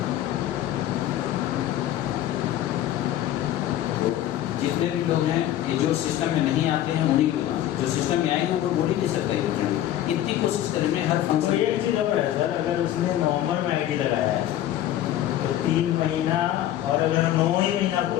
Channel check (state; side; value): quieter; right; 12.5 dB